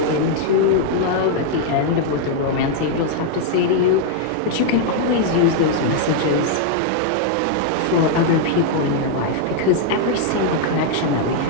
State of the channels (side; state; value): both; different; correlation 0.00